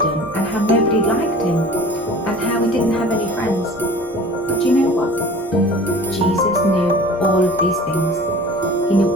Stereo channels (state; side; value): normal; both; correlation 0.43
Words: and how nobody liked him and how he didn't have any friends. But you know what? Jesus knew all of these things. He